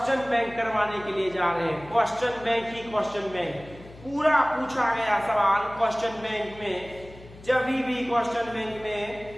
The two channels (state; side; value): noise; left; hum, 19 dB below the sound